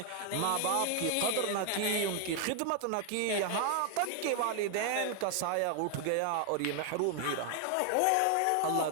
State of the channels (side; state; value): both; different; correlation 0.00